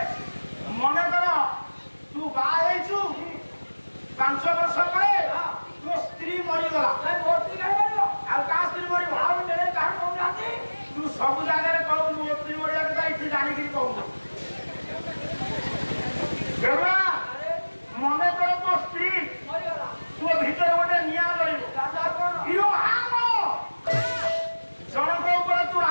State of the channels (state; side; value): inverted; both; correlation -1.00